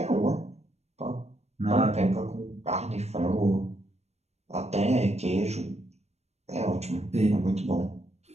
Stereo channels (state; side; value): late; left; 0.31 ms